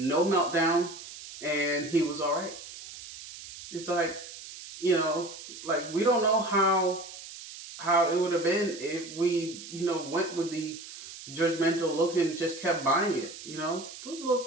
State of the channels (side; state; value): right; noise; hiss, 14 dB below the sound